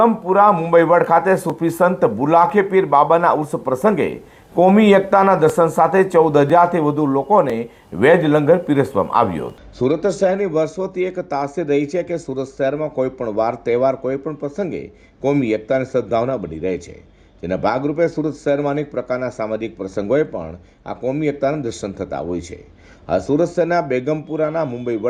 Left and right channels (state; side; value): identical; both; correlation 1.00